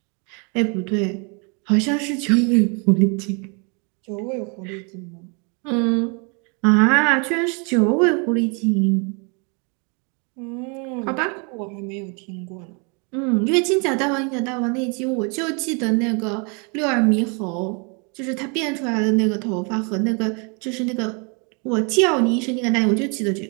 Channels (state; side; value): quieter; left; 34.8 dB